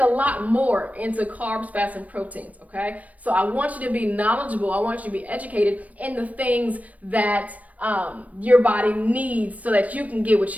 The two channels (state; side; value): late; left; 0.070 ms